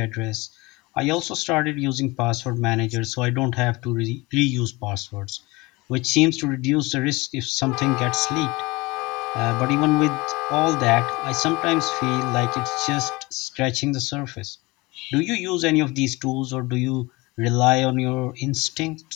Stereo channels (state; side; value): quieter; right; 23.3 dB